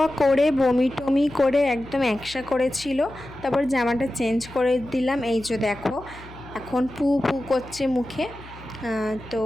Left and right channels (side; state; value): left; noise; hum, 18 dB below the sound